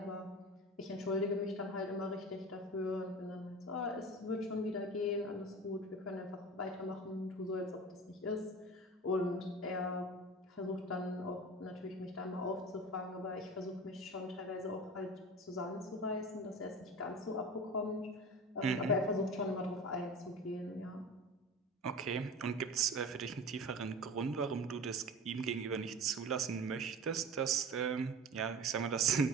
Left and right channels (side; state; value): both; normal; correlation 0.34